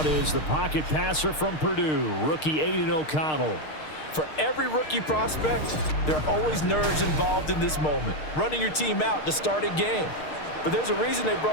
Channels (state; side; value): late; right; 6.5 ms